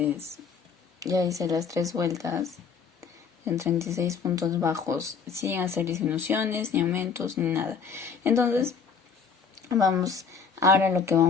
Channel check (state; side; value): quieter; right; 5.8 dB